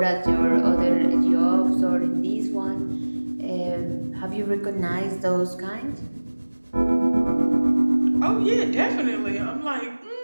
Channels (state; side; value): inverted; both; correlation -1.00